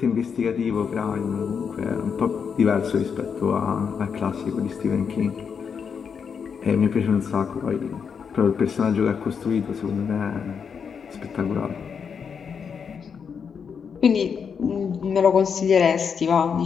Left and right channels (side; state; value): right; quieter; 6.5 dB